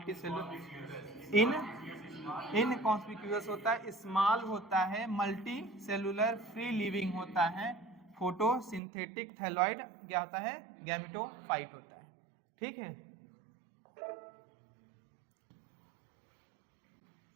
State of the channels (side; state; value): left; drops out; at 8.8 s